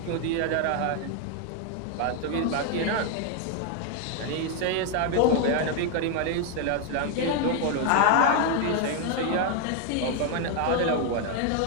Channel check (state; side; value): different; both; correlation 0.01